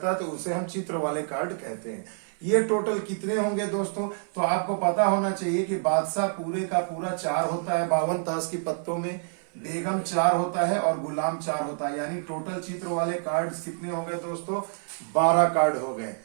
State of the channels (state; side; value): silent; left; 57 dB below the other